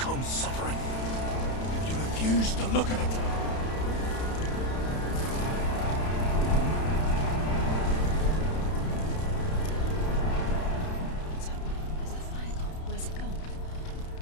suffering if you refuse to look at it. What's happening? Where's the fire gone? Where's it gone?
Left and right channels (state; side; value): late; right; 31 ms